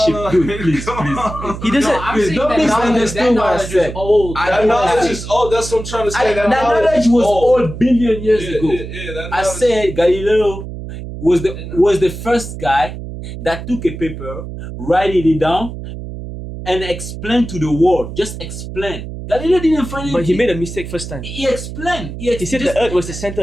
Dude, please. He doesn't. Don't misunderstand what I said. That knowledge is old. That's what I'm trying to say. That knowledge was old billion years ago. I said Galileo was the first guy that took a paper, write it down, and explain to the world. Just explain. Galileo didn't find it. But he made a mistake first time. He explained. He said the Earth was the center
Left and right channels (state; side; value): noise; right; hum, 9 dB below the sound